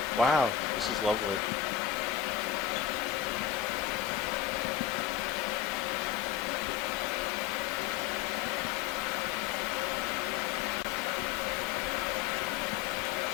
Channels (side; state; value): right; quieter; 9.8 dB